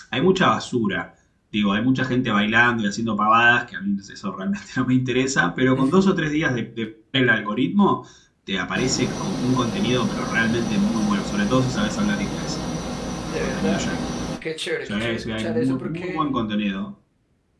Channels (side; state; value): both; identical; correlation 1.00